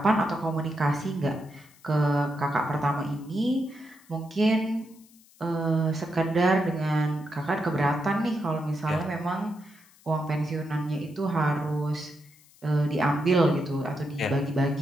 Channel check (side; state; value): left; noise; hiss, 27 dB below the sound